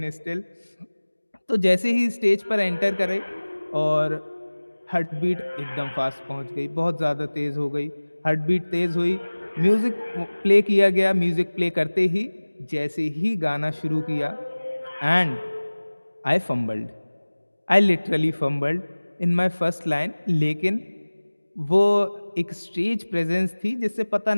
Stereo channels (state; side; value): inverted; both; correlation -1.00